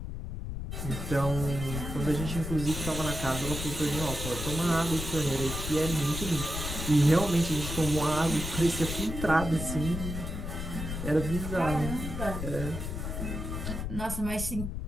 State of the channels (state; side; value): noise; left; rumble, 5 dB below the sound